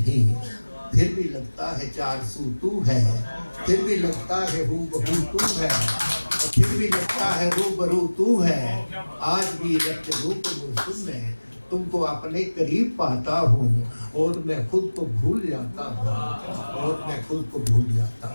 پھر بھی لگتا ہے چار سو تو ہے، پھر بھی لگتا ہے ہو بہو تو ہے، اور پھر بھی لگتا ہے رو برو تو ہے۔ آج بھی رت جگو کے موسم میں تم کو اپنے قریب پاتا ہوں، اور میں خود کو بھول جاتا ہوں، اور میں خود کو بھول جاتا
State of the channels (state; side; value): inverted; both; correlation -1.00